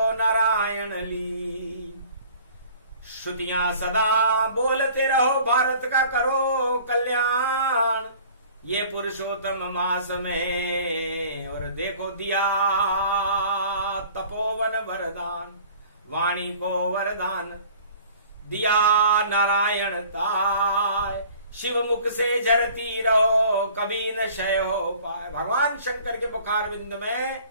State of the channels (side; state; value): both; inverted; correlation -0.49